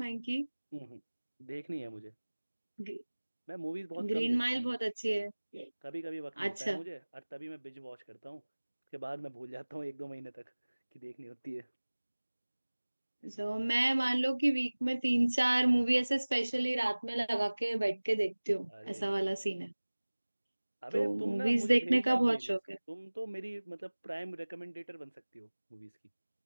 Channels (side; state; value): both; inverted; correlation -1.00